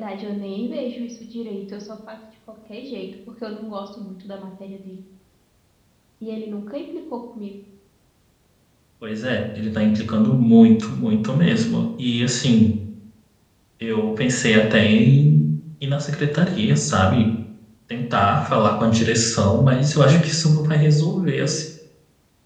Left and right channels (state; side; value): identical; both; correlation 1.00